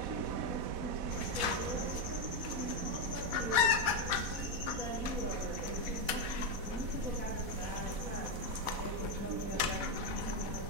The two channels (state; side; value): late; left; 4.1 ms